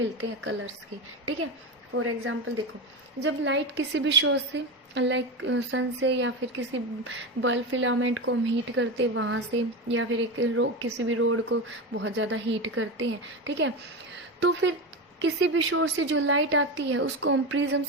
हैं कलर्स के. ठीक है, फॉर एग्जाम्पल देखो, जब लाइट किसी भी सोर्स से लाइक सन से या फिर किसी बल्ब फिलामेंट को हम हीट करते वहाँ से, या फिर एक किसी भी रोड को बहुत ज़्यादा हीट करते हैं, ठीक है, तो फिर किसी भी सोर्स से जो लाइट आती है उसको हम प्रिज्म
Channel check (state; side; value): normal; both; correlation 0.19